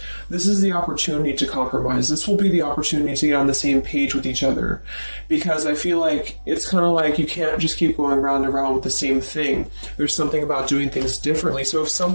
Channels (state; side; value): inverted; both; correlation -1.00